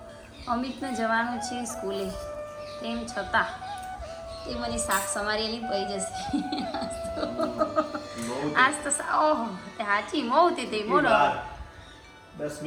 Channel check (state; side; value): identical; both; correlation 1.00